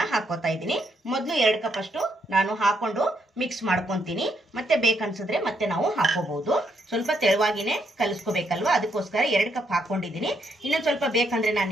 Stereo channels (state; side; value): normal; both; correlation 0.76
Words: ಹಾಕೋತಾ ಇದ್ದೀನಿ. ಮೊದಲು 2 ಕಪ್ ಅಷ್ಟು ನಾನು ಹಾಕೊಂಡು ಮಿಕ್ಸ್ ಮಾಡ್ಕೊತೀನಿ. ಮತ್ತೆ ಬೇಕನ್ಸಿದ್ರೆ ಮತ್ತೆ ನಾವು ಹಾಕೋಬಹುದು. ಸ್ವಲ್ಪ ತೆಳುವಾಗಿನೇ ಕಲಿಸ್ಕೋಬೇಕಲ್ವಾ, ಅದಕ್ಕೋಸ್ಕರ 2 ಕಪ್ ಹಾಕೊಂಡಿದ್ದೀನಿ. ಇನ್ನೊಂದು ಸ್ವಲ್ಪ ಬೇಕಂದ್ರೆ ನಾನು